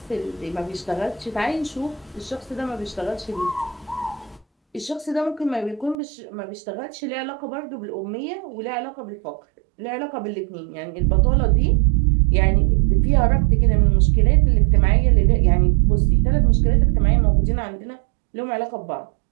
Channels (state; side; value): drops out; left; at 6.0 s